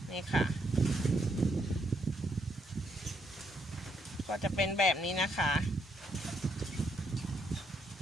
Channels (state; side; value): normal; both; correlation 0.75